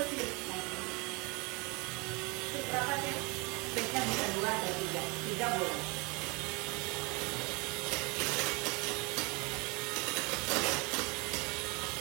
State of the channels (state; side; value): quieter; left; 28.3 dB